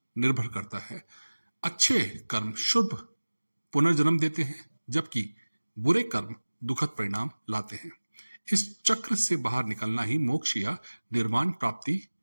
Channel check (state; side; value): inverted; both; correlation -1.00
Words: निर्भर करता है। अच्छे कर्म शुभ पुनर्जन्म देते हैं, जबकि बुरे कर्म दुखद परिणाम लाते हैं। इस चक्र से बाहर निकलना ही मोक्ष या निर्वाण प्राप्ति